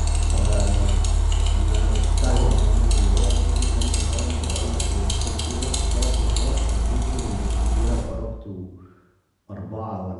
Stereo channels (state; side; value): identical; both; correlation 1.00